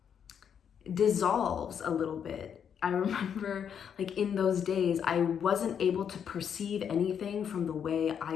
dissolves a little bit. I remember like in those days, I wasn't able to perceive anything from the way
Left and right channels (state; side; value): quieter; right; 8.0 dB